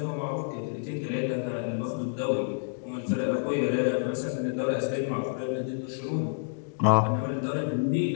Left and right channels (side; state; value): right; silent; digital silence